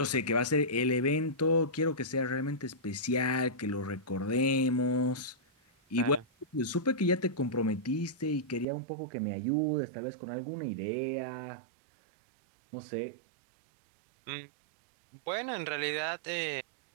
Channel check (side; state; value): left; drops out; at 8.7 s